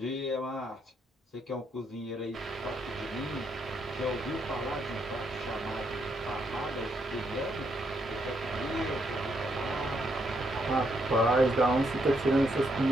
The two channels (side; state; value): both; normal; correlation 0.76